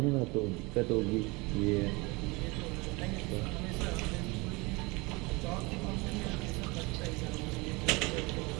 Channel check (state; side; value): quieter; left; 25.6 dB